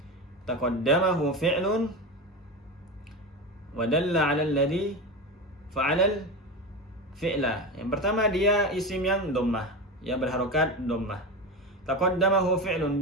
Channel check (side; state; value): both; normal; correlation 0.21